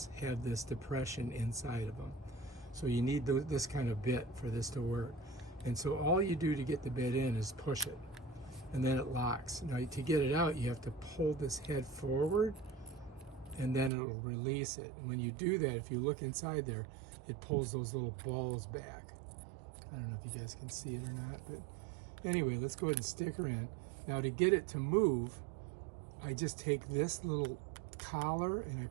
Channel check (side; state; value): left; drops out; at 13.9 s